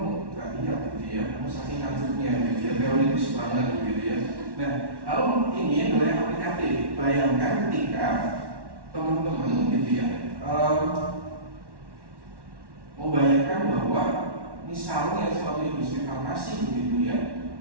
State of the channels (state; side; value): late; left; 1.1 ms